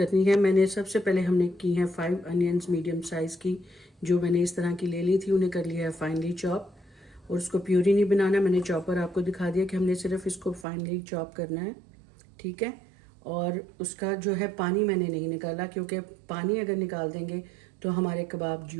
है, मैंने सबसे पहले हमने की हैं 5 अनियंस मीडियम साइज़ की, जो मैंने इस तरह की ले ली थी, उन्हें कर लिया है फाइनली चॉप। और उसको प्यूरी नहीं बनाना, मैंने चॉपर आपको दिखा दिया कि हमने सिर्फ इसको फाइनली चॉप करना है, ठीक है। और उसका जो है पानी मैंने नहीं निकाला, क्योंकि पानी अगर निकाल देंगे तो हमारे कबाब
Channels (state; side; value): drops out; left; at 10.7 s